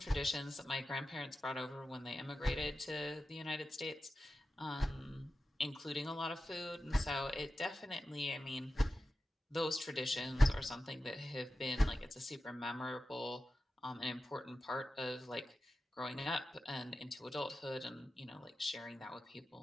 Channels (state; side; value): normal; both; correlation 0.93